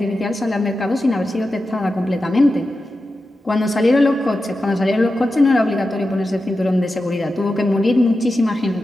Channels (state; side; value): normal; both; correlation 0.91